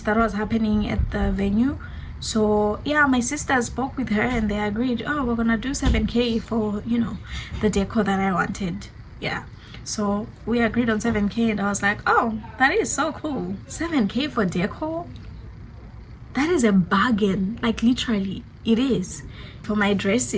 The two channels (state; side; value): identical; both; correlation 1.00